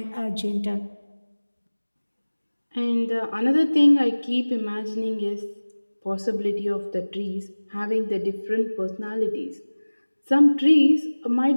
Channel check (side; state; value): both; inverted; correlation -1.00